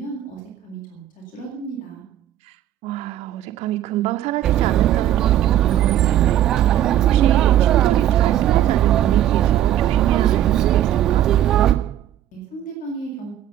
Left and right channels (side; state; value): left; quieter; 11.9 dB